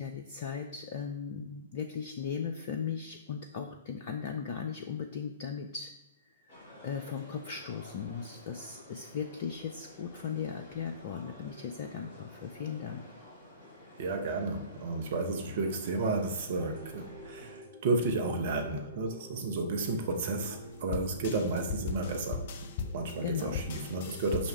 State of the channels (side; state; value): both; inverted; correlation -0.41